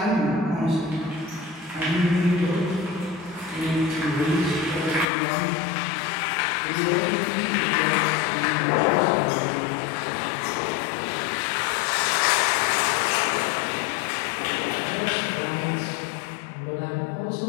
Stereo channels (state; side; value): drops out; right; at 5.1 s